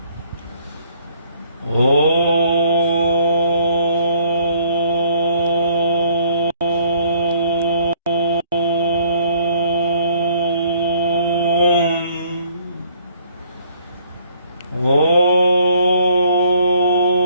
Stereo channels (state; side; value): inverted; both; correlation -0.61